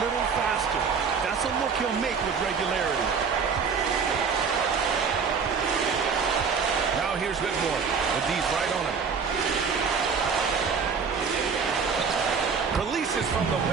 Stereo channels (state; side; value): quieter; left; 5.8 dB